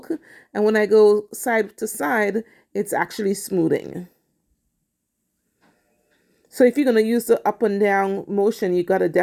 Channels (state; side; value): identical; both; correlation 1.00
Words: And when I go side to side, it's actually smoothing. So if you're going to use the up and down motion, you got to